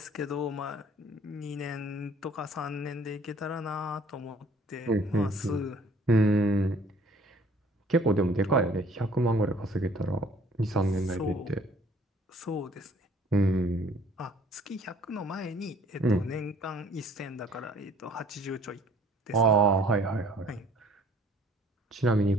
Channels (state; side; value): normal; both; correlation 0.56